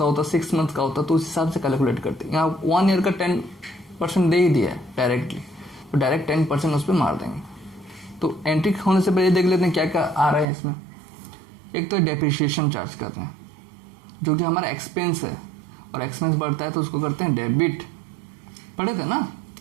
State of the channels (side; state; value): left; drops out; at 10.5 s